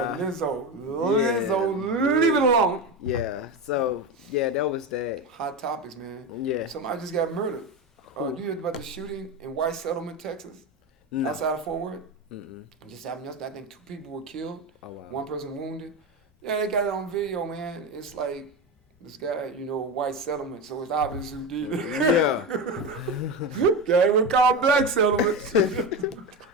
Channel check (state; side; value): normal; both; correlation 0.19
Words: But Lizzo, leave it alone. Yeah. So that was that. Hot topics, man. Yeah. Somebody just got murdered. You heard about the shooting in White Settlement, Texas? No. Outside of Fort Worth? It just happened yesterday. I think 2 people were killed. Oh, wow. 1 person wounded. Yeah, they got it on video, man. It's like this guy, White Settlement, so it's obvious who did it. Yeah. Guy we call Black Settlement.